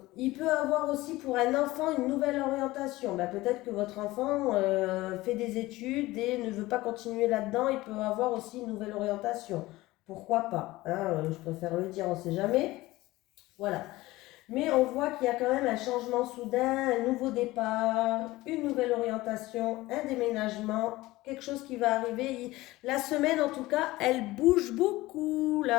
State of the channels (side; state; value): right; quieter; 18.8 dB